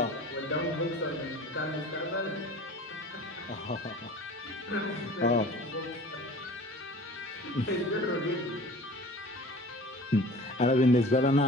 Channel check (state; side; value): normal; both; correlation 0.43